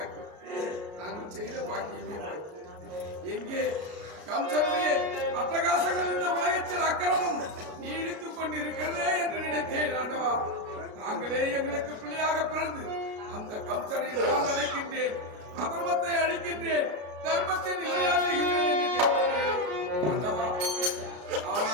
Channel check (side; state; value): left; late; 33 ms